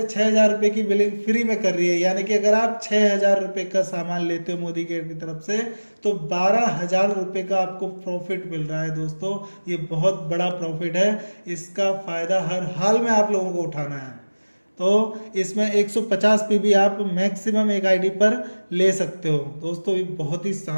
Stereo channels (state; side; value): inverted; both; correlation -1.00